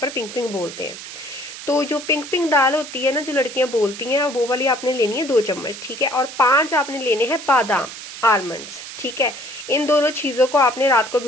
पिंक पिंक बोलते हैं। तो जो पिंक पिंक दाल होती है ना, जो लड़कियां बोलती हैं, वो वाली आपने लेनी है 2 चम्मच, ठीक है। और 5 आपने लेने हैं बादाम, आलमंड्स, ठीक है। इन दोनों चीजों को आपने रात को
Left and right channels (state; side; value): noise; right; hiss, 12 dB below the sound